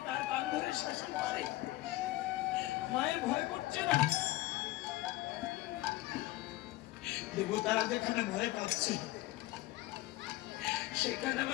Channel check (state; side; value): quieter; right; 18.0 dB